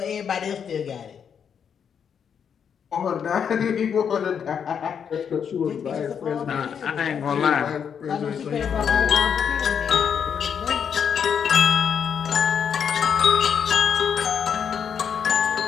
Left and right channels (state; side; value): quieter; right; 7.5 dB